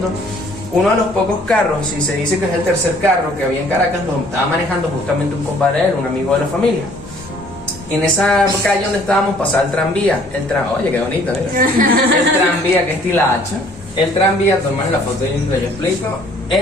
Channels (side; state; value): both; normal; correlation 0.58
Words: Uno de los pocos carros, y se dice que es el tercer carro que había en Caracas, lo estaba manejando justamente un compadre de él, un amigo de la familia. En esa calle donde estábamos pasaba el tranvía, oye, qué bonito, mira. El tranvía, que es Tilacha. El tranvía, toman la foto y yo explico.